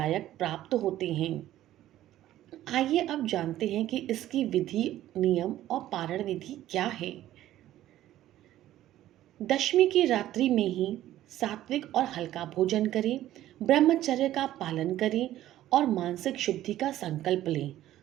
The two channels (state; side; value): quieter; left; 13.6 dB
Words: प्राप्त होते हैं। आइए अब जानते हैं कि इसकी विधि, नियम और पारण विधि क्या है। दशमी की रात्रि में ही सात्विक और हल्का भोजन करें, ब्रह्मचर्य का पालन करें और मानसिक शुद्धि का संकल्प लें।